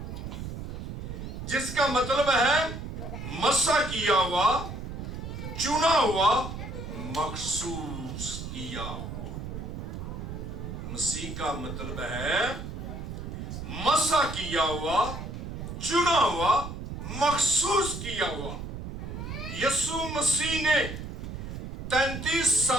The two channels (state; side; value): noise; right; rumble, 7 dB below the sound